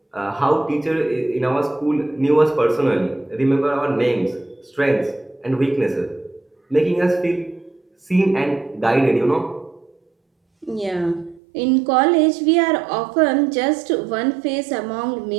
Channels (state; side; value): drops out; left; at 11.4 s